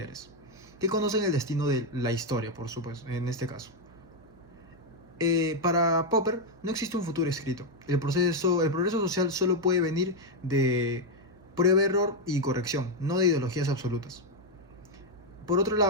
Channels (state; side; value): noise; right; hum, 25 dB below the sound